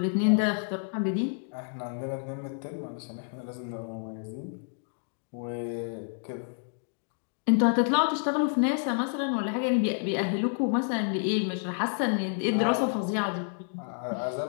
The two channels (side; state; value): right; silent; digital silence